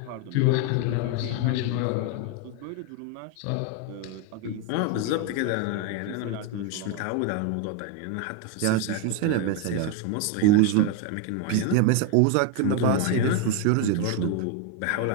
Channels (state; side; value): different; both; correlation 0.01